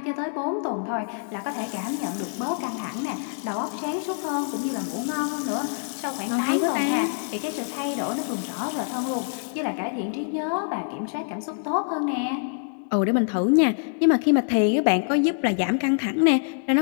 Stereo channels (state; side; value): silent; right; 60 dB below the other